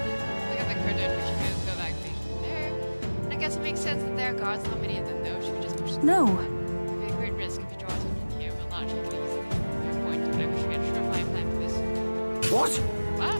at the curtain. We should go backstage from there. And I guess it makes sense that there are guards. Not many of them, though. Should we just push them? No. It would be a great risk if you draw attention here. We'll not take it easy. Fair point. I wish we had a surefire plan for this. What? What?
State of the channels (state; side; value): inverted; both; correlation -1.00